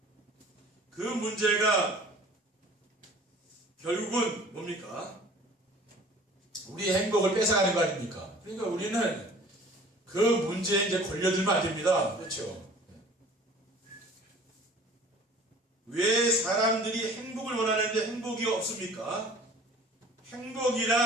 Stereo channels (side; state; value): both; normal; correlation 0.47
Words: 그 문제가 결국은 뭡니까? 우리의 행복을 뺏어가는 거 아닙니까? 그러니까 우리는 그 문제에 이제 걸려들면 안 됩니다. 그렇죠? 왜 사람들이 행복을 원하는데 행복이 없습니까?